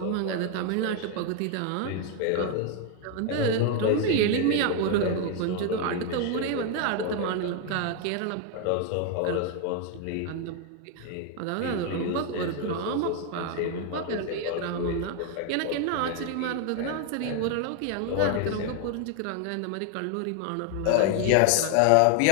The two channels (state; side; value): different; both; correlation 0.01